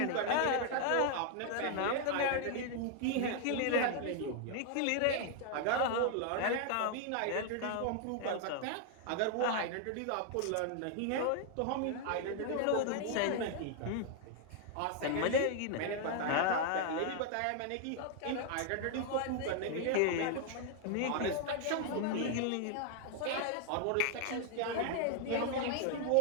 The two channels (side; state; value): both; different; correlation 0.00